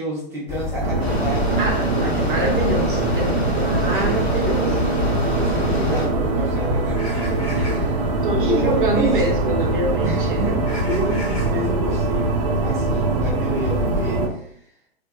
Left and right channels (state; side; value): normal; both; correlation -0.03